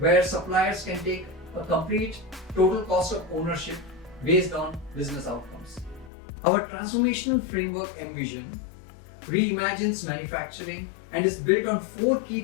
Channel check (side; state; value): right; drops out; at 6.1 s